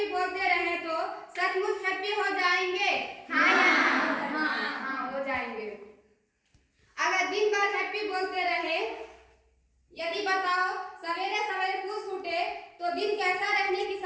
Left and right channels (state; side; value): identical; both; correlation 1.00